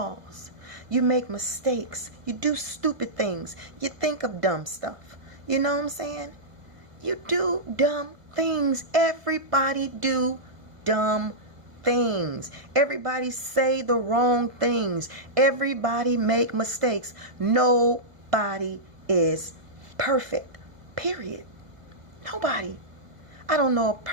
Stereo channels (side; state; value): left; late; 1.8 ms